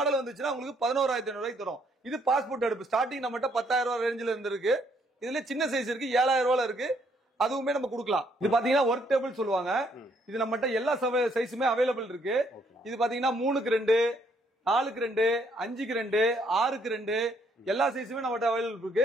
வந்துச்சுன்னா உங்களுக்கு 11500 ரூபாய்க்கு தரும். இது பாஸ்போர்ட் அடுப்பு. ஸ்டார்டிங் நம்மகிட்ட 10000 ரூபாய் ரேஞ்சில இருக்கு. இதுல சின்ன சைஸ் இருக்கு 7000 ரூபாயில இருக்கு. அதுவுமே நம்ம கொடுக்கலாம். இது பாத்தீங்கன்னா ஒர்க் டேபிள் சொல்லுவாங்க. இது நம்மகிட்ட எல்லா சைஸுமே அவைலபிள் இருக்கு. இது பாத்தீங்கன்னா 3க்கு 2, 4க்கு 2, 5க்கு 2, 6க்கு 2 எல்லா சைஸுமே நம்மகிட்ட அவைலபிள் இருக்கு.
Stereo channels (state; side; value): normal; both; correlation 0.69